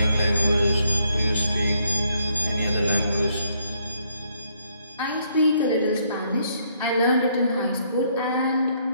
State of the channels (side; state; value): both; inverted; correlation -0.71